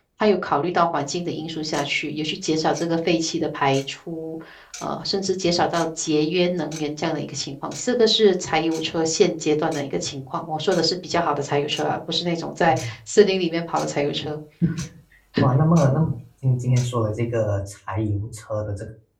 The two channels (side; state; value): both; identical; correlation 1.00